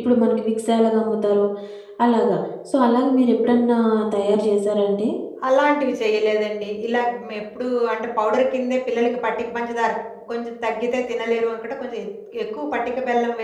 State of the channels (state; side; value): identical; both; correlation 1.00